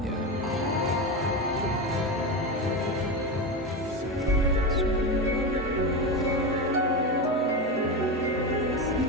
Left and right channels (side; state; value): both; normal; correlation 0.18